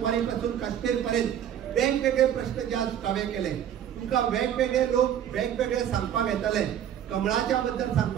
पासून काश्मीर पर्यंत वेगवेगळे प्रश्न जे हांवें केले तुमकां वेगवेगळे लोक वेगवेगळे सांगपाक येताले कमळाच्या बद्दल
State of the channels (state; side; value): quieter; left; 10.0 dB